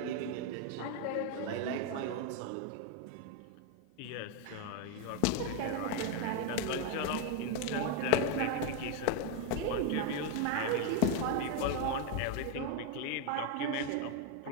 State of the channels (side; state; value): both; different; correlation 0.01